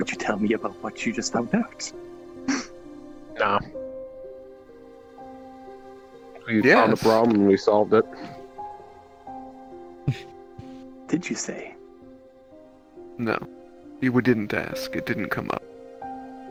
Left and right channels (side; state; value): both; identical; correlation 1.00